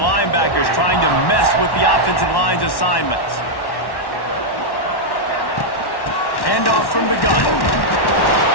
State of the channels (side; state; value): right; late; 1.1 ms